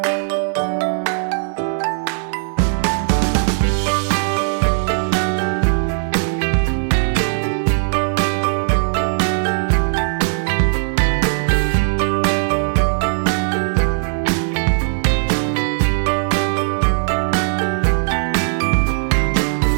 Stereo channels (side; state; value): left; silent; 61 dB below the other